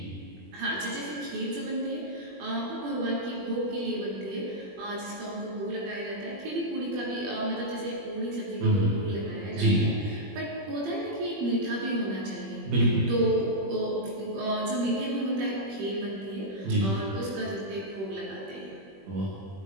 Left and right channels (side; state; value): left; late; 21 ms